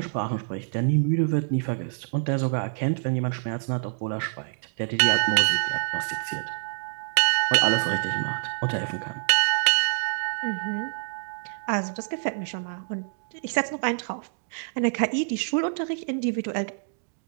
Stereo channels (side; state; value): left; silent; digital silence